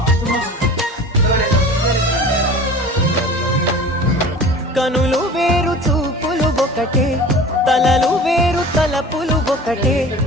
కనులు వేరు చూపులు ఒకటే తలలు వేరు తలపులు ఒకటే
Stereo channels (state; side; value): normal; both; correlation 0.40